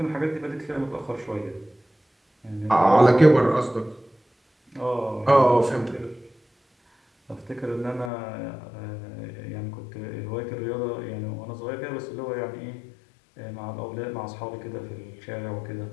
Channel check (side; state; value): right; drops out; at 8.1 s